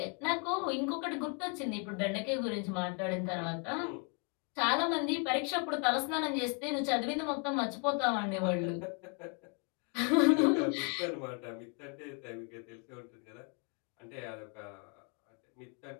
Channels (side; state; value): right; quieter; 36.4 dB